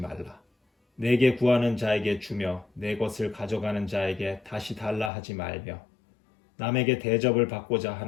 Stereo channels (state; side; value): drops out; right; at 5.1 s